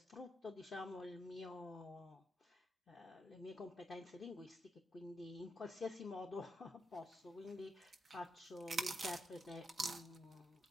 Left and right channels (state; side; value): normal; both; correlation 0.83